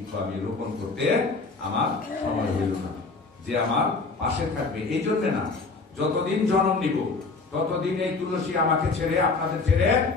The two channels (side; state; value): right; quieter; 4.0 dB